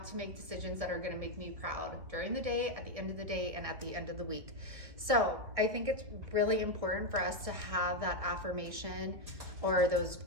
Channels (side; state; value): left; late; 1.9 ms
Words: to make decisions that are going to make me proud during the day, at the end of the day, and at the end of the week. So I think it's really important for us to have that affirmation or those